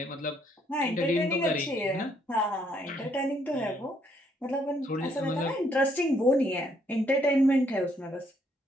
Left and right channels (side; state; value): both; normal; correlation 0.70